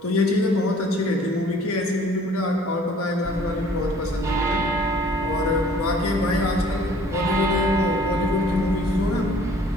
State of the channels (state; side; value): normal; both; correlation 0.54